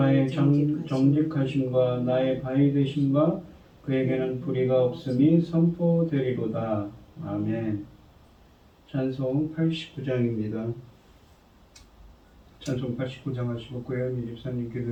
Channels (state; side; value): identical; both; correlation 1.00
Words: 정직하심과 나의 바위 되심과 그에게는 불의가 없음이 선포되리로다. 아멘. 찬송 89장입니다. 찬송 89장 하시고 고현미 집사님